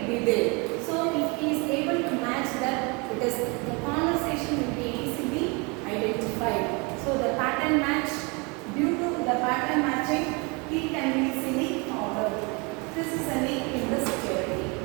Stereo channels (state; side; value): quieter; left; 29.9 dB